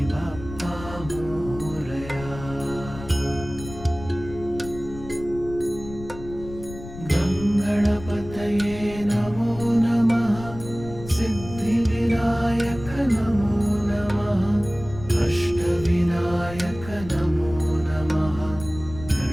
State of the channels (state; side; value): noise; left; rumble, 13 dB below the sound